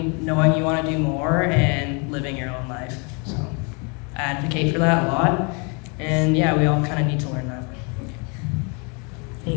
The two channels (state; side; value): quieter; right; 33.6 dB